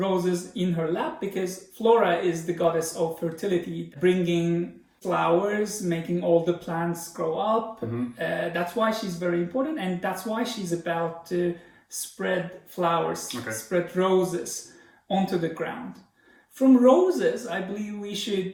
in her lap because Flora is the goddess of fertility, bringing flowers, making all the plants grow up. That's why she's very important, and that's why she's about to spread flowers, spread roses onto the ground. From roses, I believe we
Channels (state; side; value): identical; both; correlation 1.00